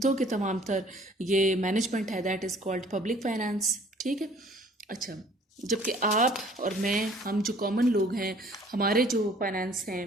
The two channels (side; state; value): both; normal; correlation 0.55